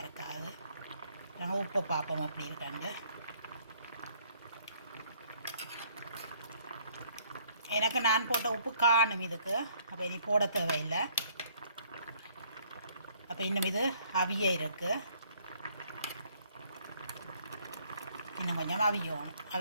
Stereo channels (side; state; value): both; inverted; correlation -0.63